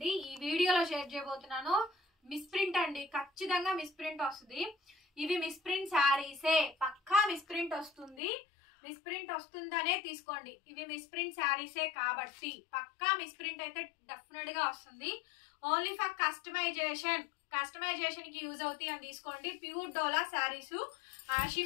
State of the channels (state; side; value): drops out; right; at 8.2 s